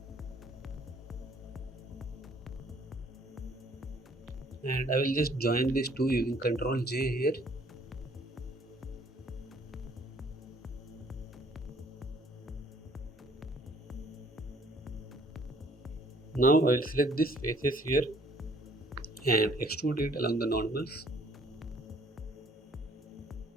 And I will just join these two using Ctrl J here. Now I will select these faces here and extrude it along the normals.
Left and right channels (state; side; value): normal; both; correlation 0.60